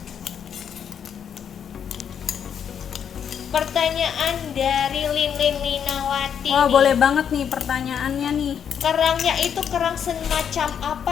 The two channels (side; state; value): right; quieter; 8.1 dB